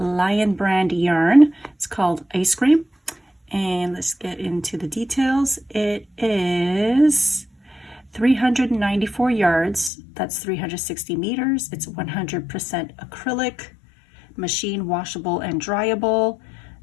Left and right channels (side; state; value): right; drops out; at 9.9 s